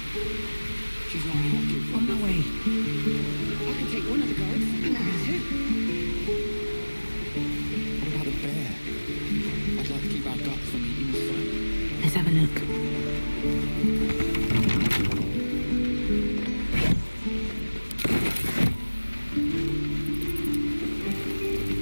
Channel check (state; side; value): inverted; both; correlation -1.00